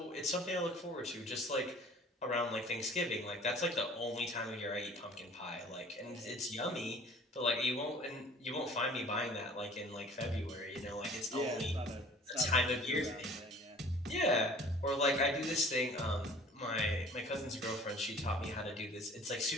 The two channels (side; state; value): both; normal; correlation 0.49